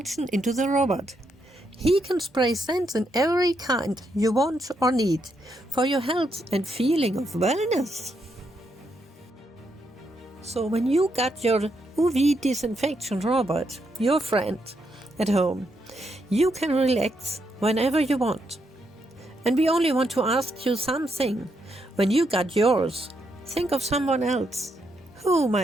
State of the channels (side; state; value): both; normal; correlation 0.79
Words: into the robot. He can spray scents in every kind you want or need for your health and feeling of wellness. So when you got your UV disinfection robot, your friend, at home, you can relax whenever you want. And we only want to ask you something. When you got yours, think of someone else who